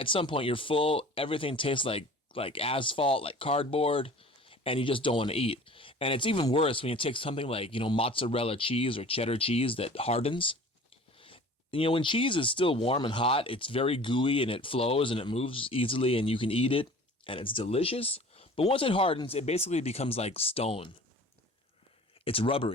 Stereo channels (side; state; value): both; normal; correlation 0.44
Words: full, everything tastes like asphalt, like cardboard, and you just don't want to eat. And it's even worse when you take something like, mozzarella cheese or cheddar cheese that hardens. When cheese is still warm and hot, it's very gooey and it flows and it moves easily and you can eat it and it's delicious. But once it hardens, it basically becomes like stone. It's